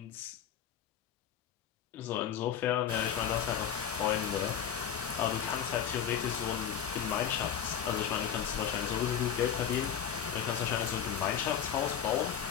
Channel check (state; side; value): quieter; right; 8.6 dB